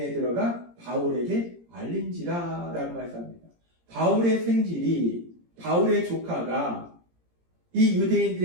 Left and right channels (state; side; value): late; left; 17 ms